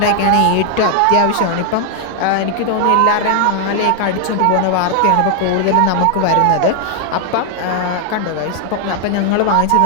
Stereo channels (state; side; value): different; both; correlation 0.00